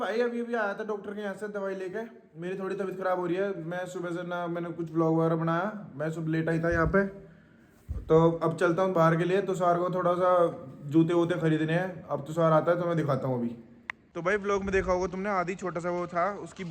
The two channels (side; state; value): both; identical; correlation 1.00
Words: अभी आया था डॉक्टर के यहाँ से दवाई लेके। मेरी थोड़ी तबीयत खराब हो रही है। मैं सुबह से ना मैंने कुछ ब्लॉग वगैरह बनाया, मैं सुबह लेट आई था यहाँ पे। तो अब चलता हूँ बाहर के लिए। तो सार को थोड़ा सा जूते वूते खरीदने हैं। अब तो सार आता है तो मैं दिखाता हूँ अभी। तो भाई ब्लॉग में देखा होगा तुमने, आदि छोटा सा वो था, उसकी